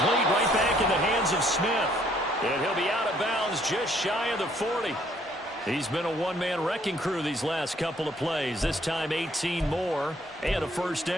right back in the hands of Smith. And he'll be out of bounds just shy of the 40. He's been a one-man wrecking crew these last couple of plays. This time 18 more and a 1st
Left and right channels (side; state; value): both; normal; correlation 0.65